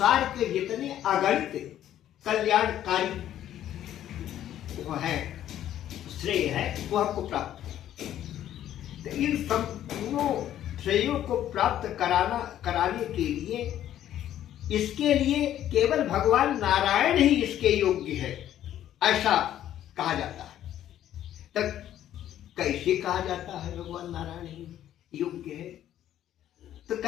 के जितने अगणित कल्याणकारी वो है, श्रेय है, वो हमको प्राप्त हो। तो इन संपूर्ण श्रेयों को प्राप्त कराने के लिए, इसके लिए केवल भगवान नारायण ही इसके योग्य है, ऐसा कहा जाता है। तब कैसे कहा जाता है भगवान नारायण ही योग्य है? तो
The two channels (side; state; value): right; quieter; 11.7 dB